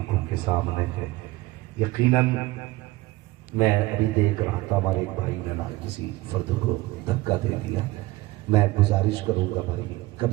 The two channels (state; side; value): quieter; left; 18.7 dB